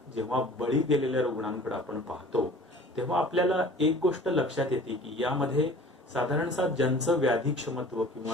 जेव्हा बळी गेलेल्या रुग्णांकडे आपण पाहतो तेव्हा आपल्याला एक गोष्ट लक्षात येते की यामध्ये साधारणतः ज्यांचं व्याधी क्षमत्व किंवा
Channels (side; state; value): both; normal; correlation 0.46